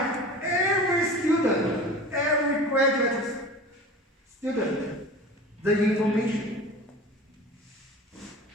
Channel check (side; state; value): both; normal; correlation 0.37